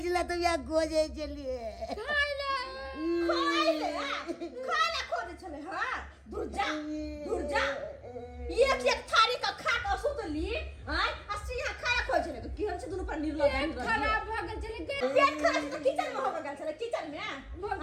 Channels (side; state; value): both; identical; correlation 1.00